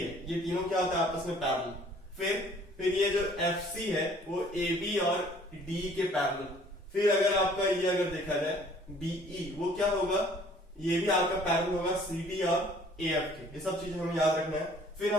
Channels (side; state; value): both; normal; correlation 0.56